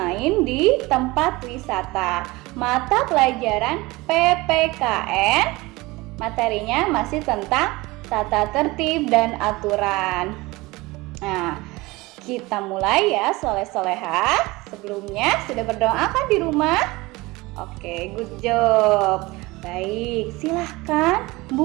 di tempat wisata. Mata pelajaran PPKN, materinya masih tentang tata tertib dan aturan. Nah, kita mulai ya soleh-solehah. Sebelumnya sudah berdoa kan di rumah? Oke, good job. Baik, silahkan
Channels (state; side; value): quieter; left; 21.9 dB